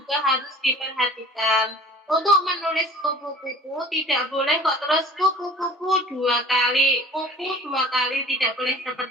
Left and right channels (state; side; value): normal; both; correlation 0.45